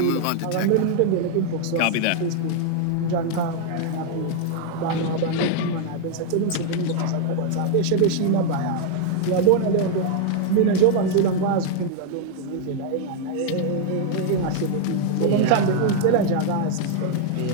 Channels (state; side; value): different; both; correlation 0.00